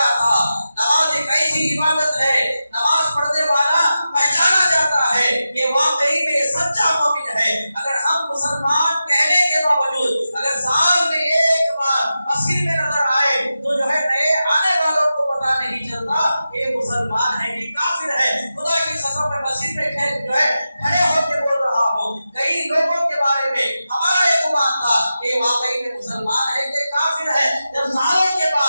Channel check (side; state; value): both; inverted; correlation -0.92